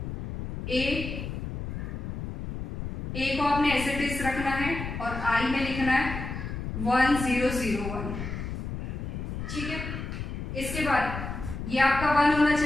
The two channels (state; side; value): noise; left; rumble, 5 dB below the sound